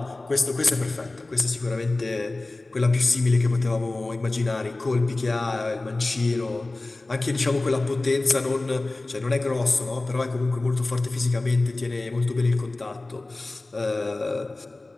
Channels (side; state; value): right; quieter; 3.0 dB